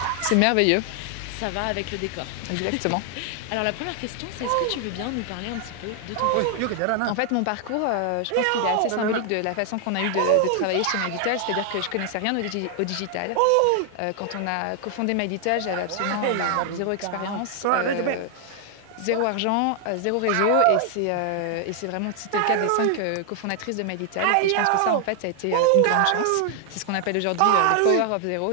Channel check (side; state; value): both; different; correlation 0.00